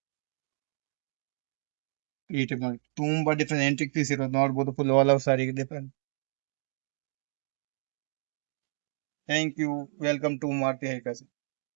ಈ ಟೈಪ್ ನೋಡಿ ತುಂಬಾ ಡಿಫ್ರೆಂಟ್ ಎಂಟಿಕ್ ಪೀಸ್ ಇರೋದು. ನೋಡಬಹುದು ಫುಲ್ ಆಲ್ ಓವರ್ ಸಾರಿಗೆ different. Thank you. Welcome to Maruti high fashion.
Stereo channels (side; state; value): left; silent; digital silence